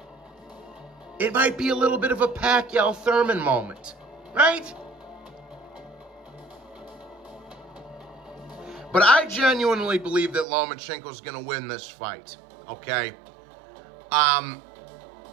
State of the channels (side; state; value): left; drops out; at 10.5 s